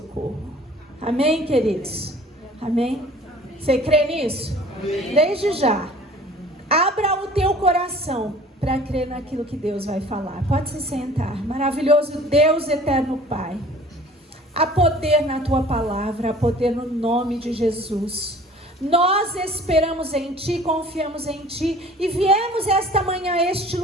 Amém, queridos? Amém? Você crê nisso? Amém. Desde já, abra o teu coração para crer naquilo que Deus vai falar. Pode se sentar. Maravilhoso Deus, eterno Pai. Há poder na tua palavra, há poder no nome de Jesus. Nós esperamos em ti, confiamos em ti e viemos esta manhã a este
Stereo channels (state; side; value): normal; both; correlation 0.49